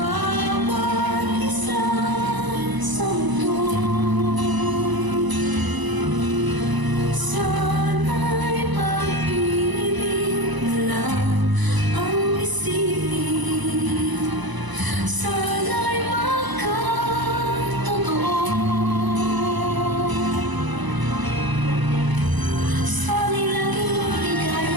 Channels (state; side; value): late; left; 1.0 ms